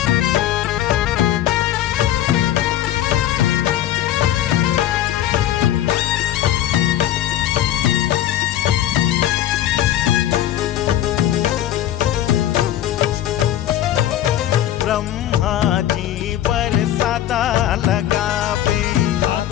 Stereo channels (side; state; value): right; quieter; 12.2 dB